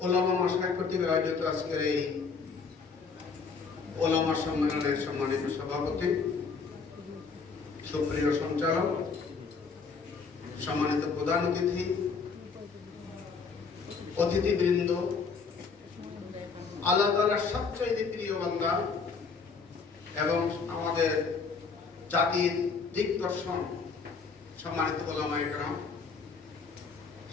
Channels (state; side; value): quieter; right; 5.1 dB